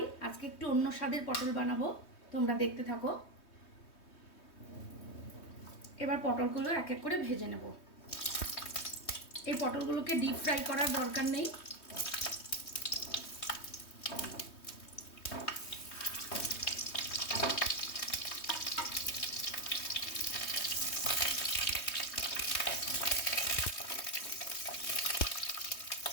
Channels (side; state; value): right; late; 3.2 ms